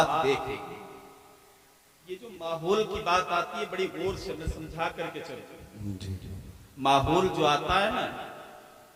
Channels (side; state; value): both; identical; correlation 1.00